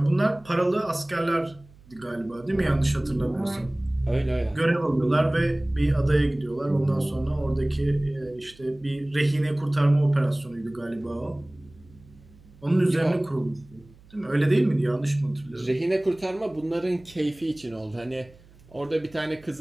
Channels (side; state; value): right; noise; hum, 25 dB below the sound